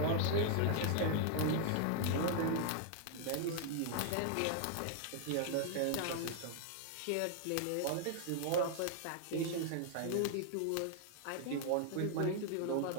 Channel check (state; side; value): different; both; correlation -0.01